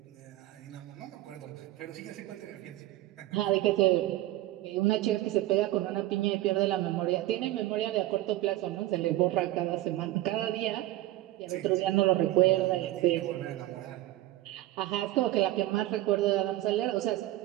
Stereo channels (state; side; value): quieter; left; 16.0 dB